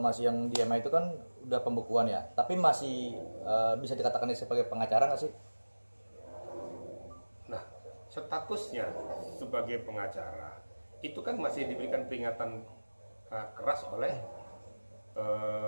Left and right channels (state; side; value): inverted; both; correlation -1.00